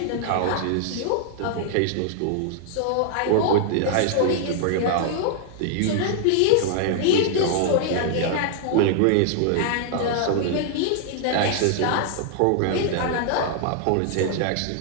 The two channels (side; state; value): both; different; correlation -0.01